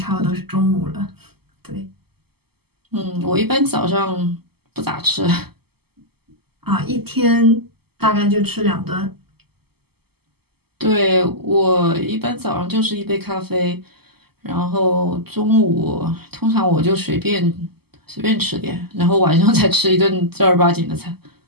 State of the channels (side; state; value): left; late; 0.96 ms